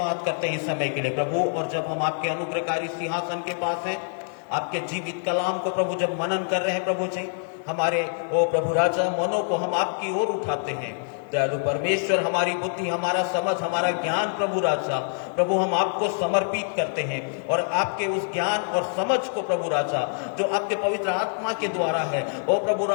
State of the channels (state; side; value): silent; right; digital silence